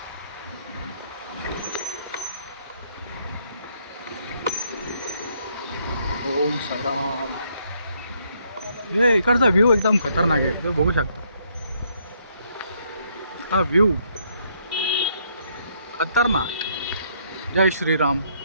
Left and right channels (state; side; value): inverted; both; correlation -0.70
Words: ओम साईराम. हे इकडचा व्ह्यू एकदम खतरनाक आहे, तुम्ही बघू शकता. हा व्ह्यू खतरनाक. जय श्रीराम.